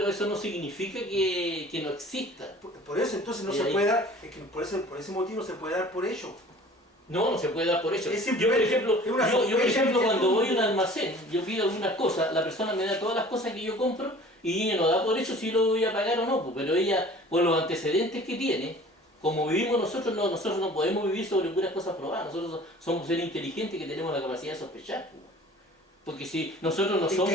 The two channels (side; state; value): both; normal; correlation 0.47